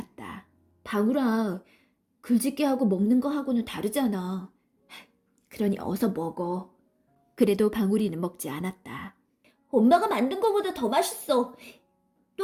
방울아, 글짓기하고 먹는 거하고는 다르잖아. 그러니 어서 먹어. 그래도 방울이는 먹지 않았다. 엄마가 만든 거보다 더 맛있어.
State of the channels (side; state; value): both; identical; correlation 1.00